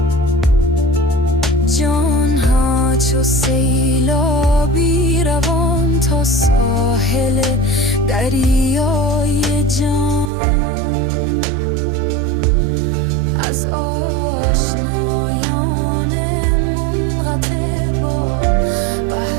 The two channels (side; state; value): left; drops out; at 10.3 s